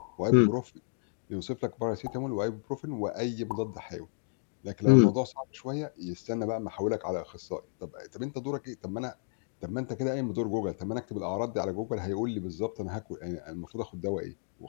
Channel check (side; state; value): right; silent; digital silence